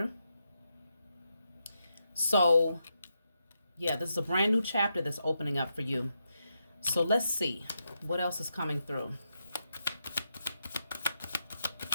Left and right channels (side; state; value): both; inverted; correlation -0.84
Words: So yeah, this is a brand new chapter that's opening up for you. So let's see what else is coming through.